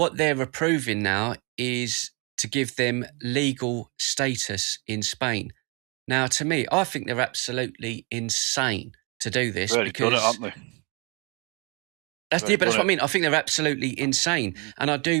they're approving now is to give them legal status in Spain. Now, to me, I think they're absolutely insane to do this. Really because done it, haven't they? That's what I mean. I think they're absolutely insane, and I do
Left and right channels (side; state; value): left; quieter; 31.9 dB